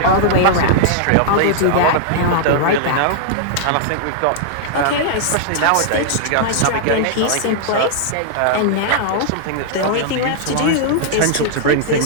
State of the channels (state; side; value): different; both; correlation -0.01